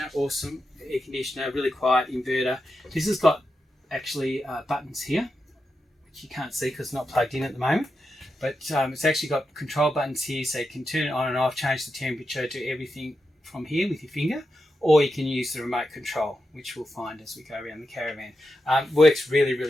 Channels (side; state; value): both; normal; correlation 0.88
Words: awesome air conditioner, really quiet inverter. This has got actually buttons here, which you can't see because it's not plugged in at the moment, but it's actually got control buttons here, so you can turn it on and off, change the temperature, do everything from here with your finger, or you can use the remote control, which we'll find as we go around the caravan. Works really,